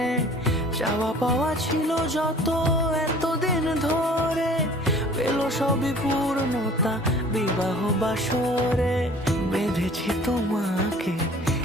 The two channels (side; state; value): both; normal; correlation 0.49